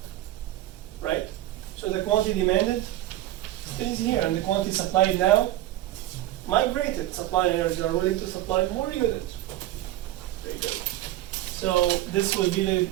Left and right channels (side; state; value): left; quieter; 14.7 dB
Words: Right? So the quantity demanded stays here, and the quantity supplied now migrated. Suppliers are willing to supply more units. Very good. So this will be the